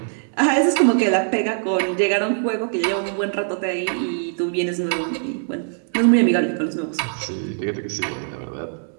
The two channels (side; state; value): left; silent; digital silence